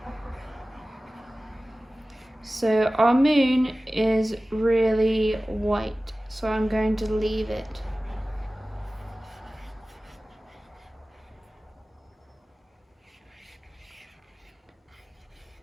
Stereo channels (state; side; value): normal; both; correlation 0.97